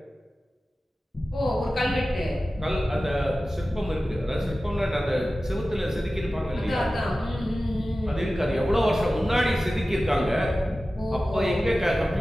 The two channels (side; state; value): both; normal; correlation 0.95